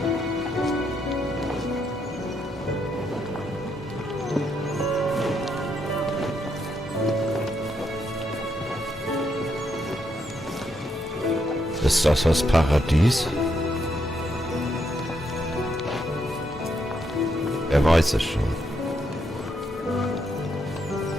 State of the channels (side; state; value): both; normal; correlation 0.78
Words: Ist das Paradies? Wer weiß es schon.